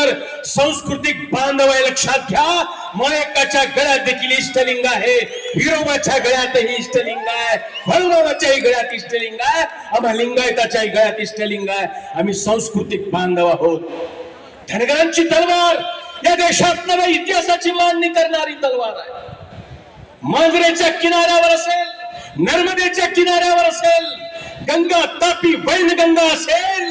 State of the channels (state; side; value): identical; both; correlation 1.00